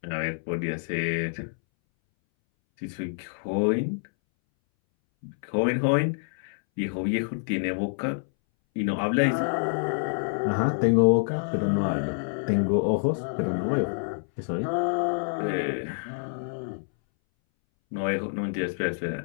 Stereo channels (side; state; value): right; silent; 60 dB below the other